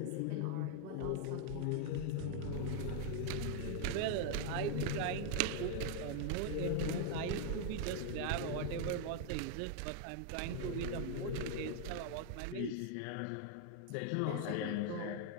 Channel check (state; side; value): different; both; correlation 0.00